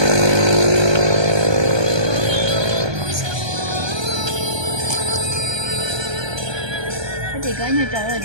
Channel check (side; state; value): left; late; 1.2 ms